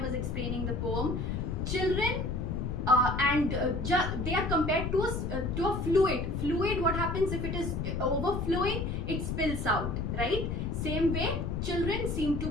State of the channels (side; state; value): left; noise; rumble, 2 dB below the sound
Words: was explaining the poem, children they are compared to a fluid. Fluid, what happens if it is overflowing? It spills out, right? Same way, children seem to